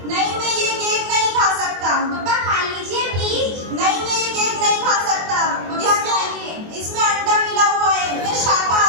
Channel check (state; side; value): late; left; 24 ms